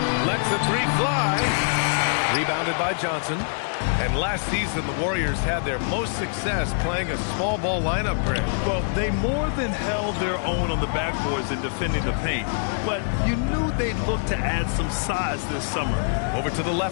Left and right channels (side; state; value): right; silent; digital silence